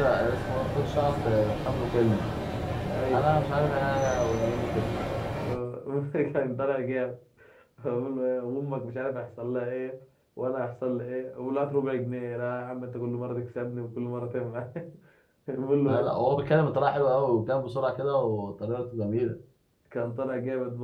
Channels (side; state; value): both; identical; correlation 1.00